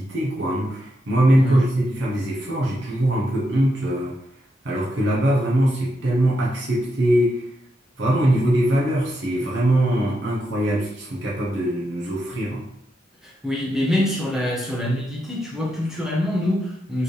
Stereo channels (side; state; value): both; normal; correlation 0.83